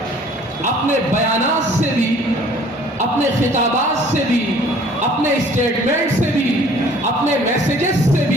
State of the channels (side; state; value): both; normal; correlation 0.54